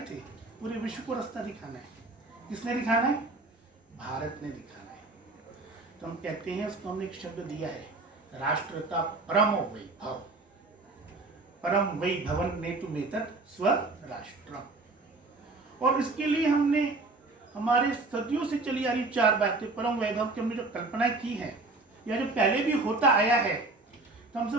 थे, पूरे विश्व को रास्ता दिखाना है। किसने दिखाना है? भारत ने दिखाना है। तो हम कहते हैं, उसको हमने एक शब्द दिया है, राष्ट्र का परम वैभव, परम वैभवन नेतुमेतत् स्वराष्ट्रम। और इसके लिए हमने हमारे सदियों से चली आ रही 4 बातें, परम वैभव की हमने जो कल्पना की है या जो पहले भी होता आया है, तो हम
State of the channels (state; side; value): quieter; left; 3.3 dB